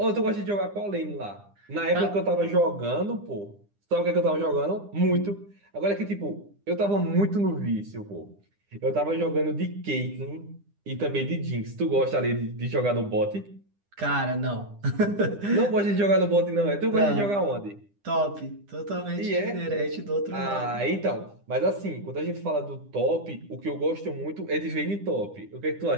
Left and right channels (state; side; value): late; left; 9.9 ms